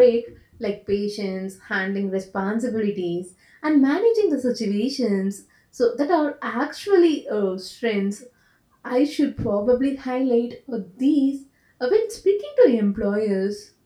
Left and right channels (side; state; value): both; identical; correlation 1.00